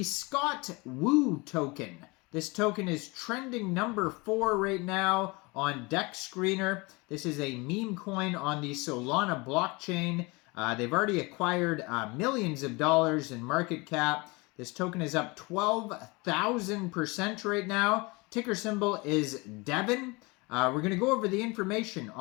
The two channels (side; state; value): right; quieter; 25.9 dB